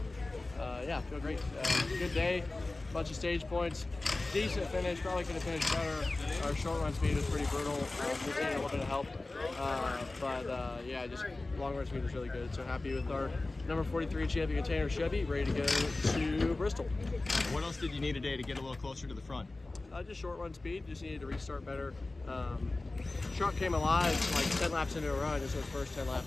feel great. Good day, bunch of stage points. Decent finish, probably could have finished better. Our short run speed was pretty brutal. We needed a little bit of help. Yeah, just long run speed was really good. So happy with our number 43 champion container Chevy, ready to go to Bristol. What else did you need today to get a little closer to the front? Just short run speed, just needed to restart better. Truck came alive like 10 laps into a run, just those first 10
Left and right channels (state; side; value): quieter; right; 3.1 dB